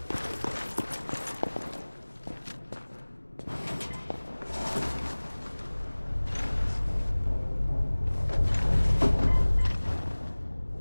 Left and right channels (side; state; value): both; inverted; correlation -1.00